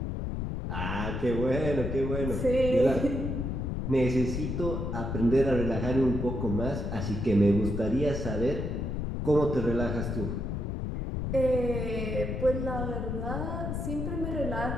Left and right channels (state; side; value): noise; left; rumble, 2 dB below the sound